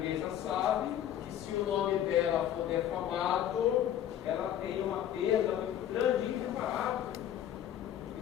sabe que se o nome dela for defamado, ela tem uma perda muito grande e irreparável.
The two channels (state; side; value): quieter; right; 10.8 dB